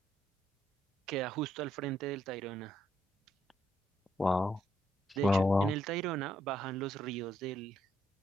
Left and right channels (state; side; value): normal; both; correlation 0.73